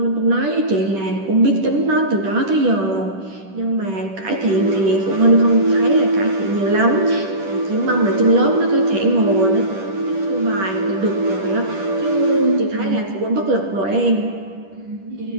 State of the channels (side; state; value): left; late; 10 ms